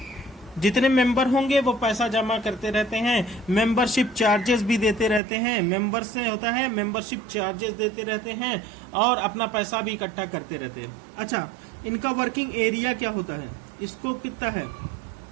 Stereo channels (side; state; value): left; drops out; at 5.2 s